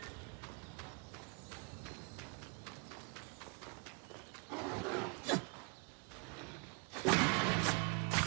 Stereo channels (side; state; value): left; quieter; 34.7 dB